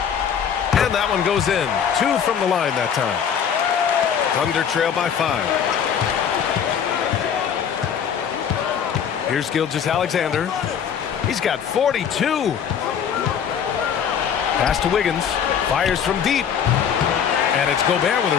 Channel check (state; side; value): quieter; right; 7.9 dB